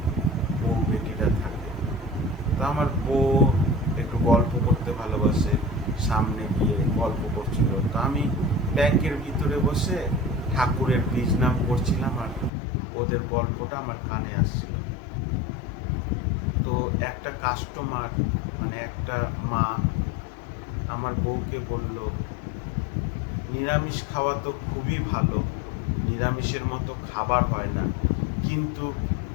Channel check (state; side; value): drops out; right; at 12.5 s